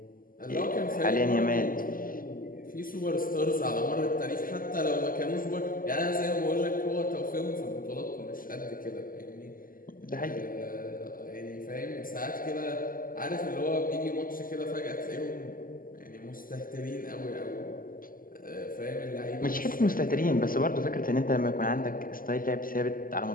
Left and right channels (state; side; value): late; right; 0.41 ms